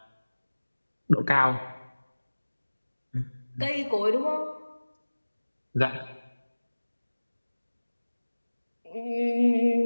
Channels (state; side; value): inverted; both; correlation -1.00